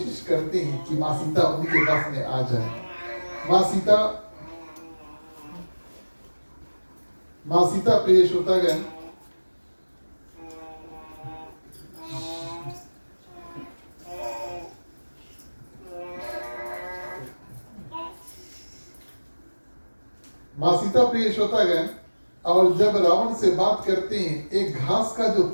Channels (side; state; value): both; inverted; correlation -1.00